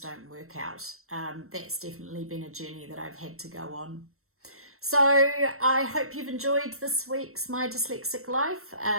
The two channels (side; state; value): left; late; 0.63 ms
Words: work out. That's definitely been a journey that I've had to go on. So I hope you've enjoyed this week's My Dyslexic Life,